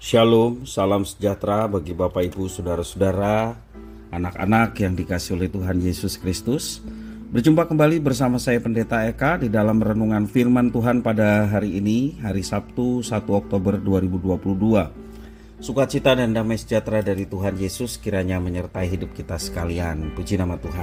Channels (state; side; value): identical; both; correlation 1.00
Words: Shalom, salam sejahtera bagi Bapak Ibu, Saudara-saudara, anak-anak yang dikasihi oleh Tuhan Yesus Kristus. Berjumpa kembali bersama saya Pendeta Eka di dalam renungan firman Tuhan pada hari ini, hari Sabtu 1 Oktober 2022. Sukacita dan damai sejahtera dari Tuhan Yesus kiranya menyertai hidup kita sekalian. Puji nama